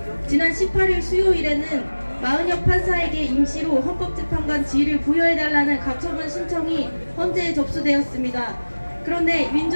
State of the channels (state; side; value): inverted; both; correlation -1.00